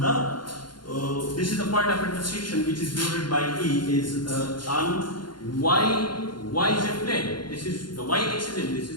the. This is the point of intersection which is denoted by E is on yz plane. This is the y-axis and this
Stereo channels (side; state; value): right; late; 0.71 ms